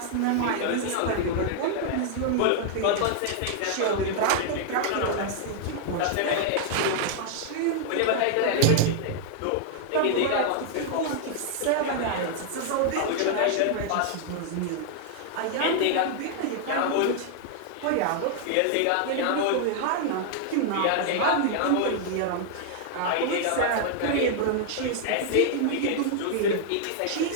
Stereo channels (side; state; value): both; different; correlation 0.00